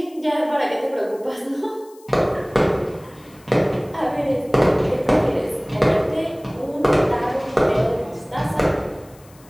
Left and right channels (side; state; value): left; noise; hiss, 27 dB below the sound